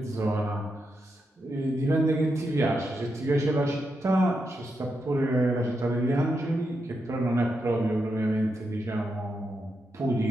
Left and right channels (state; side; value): normal; both; correlation 0.85